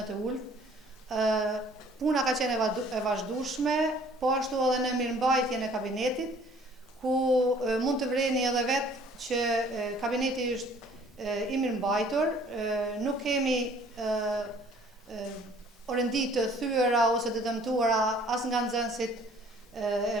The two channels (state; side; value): normal; both; correlation 0.55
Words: të ulët. Puna ka qenë e vazhdueshme, po ashtu edhe në mirëmbajtjen e kabinetit, ku mund të vreni edhe vetë që kabineti është i mirëmbajtur, nuk kemi orendi të thyera ose të dëmtuara as nga nxënësit e